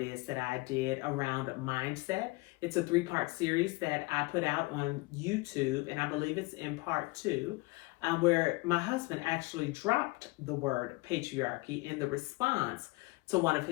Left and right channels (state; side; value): quieter; right; 24.0 dB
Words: that I did around mindset. It's a 3-part series that I put out on YouTube, and I believe it's in part 2, where my husband actually dropped the word patriarchy in the response to one of